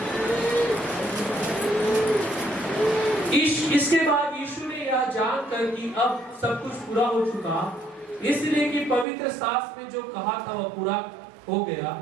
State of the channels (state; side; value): drops out; left; at 9.1 s